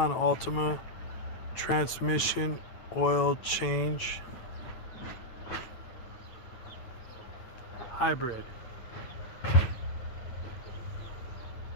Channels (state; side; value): late; right; 9.0 ms